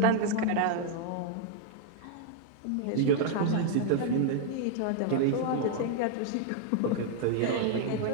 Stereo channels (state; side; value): different; both; correlation 0.00